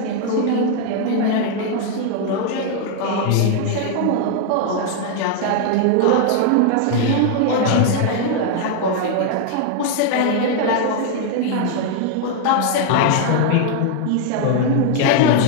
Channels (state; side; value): different; both; correlation 0.00